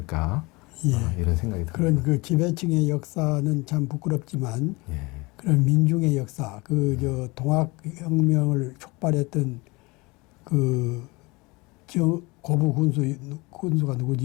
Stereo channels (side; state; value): right; quieter; 24.7 dB